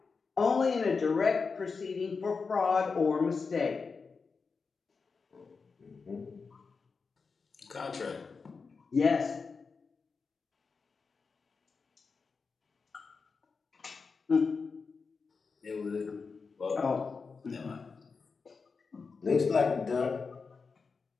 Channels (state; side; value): quieter; right; 4.9 dB